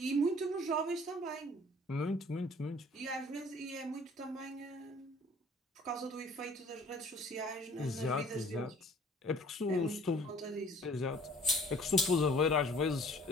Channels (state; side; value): normal; both; correlation 0.53